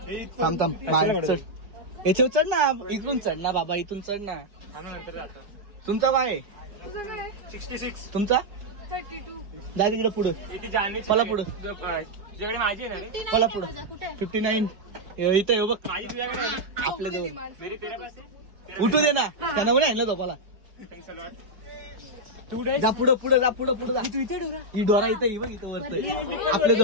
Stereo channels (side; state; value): left; late; 4.9 ms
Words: थांब बाहेर याच्यावर चढ ना. इथून चढ ना बाबा, इथून चढ ना. तुमचा काय आहे? 66. तुमचा 32. जा तिकडे पुढं. मला पुढं मला पुढं 59. इथं येऊ बघ आपल्या जवळ. उठू दे ना त्यांना. बरं आणलं झोपाला. जा पुढं पुढं जा. पुढं पुढं जा. ही डोरा इथे बघ. इथं वरत आपल्या